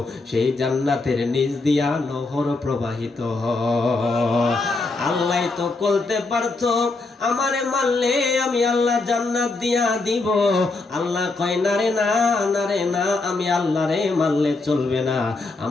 সেই জান্নাতের নিচ দিয়া নহর প্রবাহিত হয়। আল্লাহ তো বলতে পারতো আমারে মানলে আমি আল্লাহ জান্নাত দিয়া দিব। আল্লাহ কয় না রে না, না রে না, আমি আল্লাহরে মানলে চলবে না,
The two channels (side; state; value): right; quieter; 3.5 dB